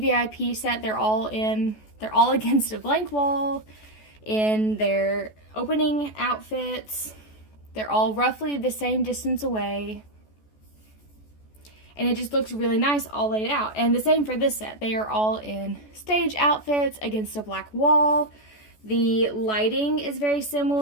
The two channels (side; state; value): right; late; 14 ms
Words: set, they're all against a blank wall in their opening outfits. They're all roughly the same distance away. And it just looks really nice all laid out. And the same for this set. They are all in stage outfits against a black wall. The lighting is very